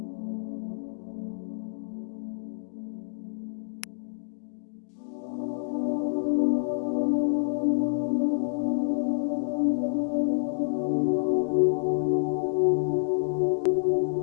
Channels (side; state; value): right; silent; digital silence